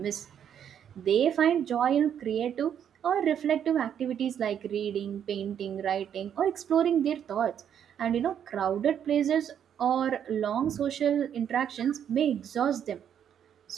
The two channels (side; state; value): left; quieter; 9.0 dB